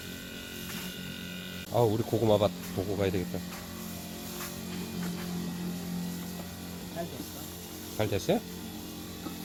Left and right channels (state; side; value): identical; both; correlation 1.00